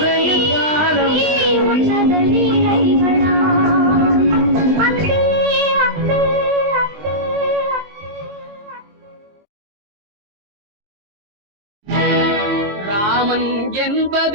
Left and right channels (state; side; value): late; left; 20 ms